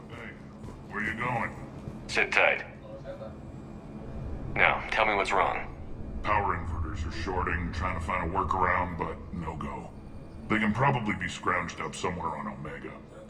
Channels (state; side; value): identical; both; correlation 1.00